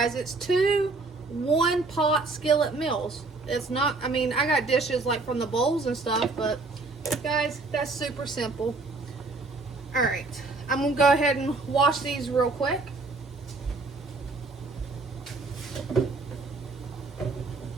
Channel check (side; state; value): left; quieter; 3.6 dB